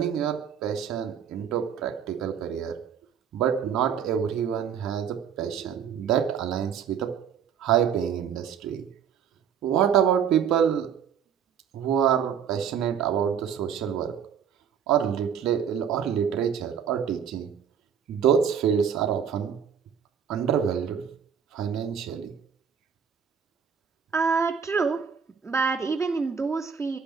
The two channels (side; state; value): left; quieter; 7.8 dB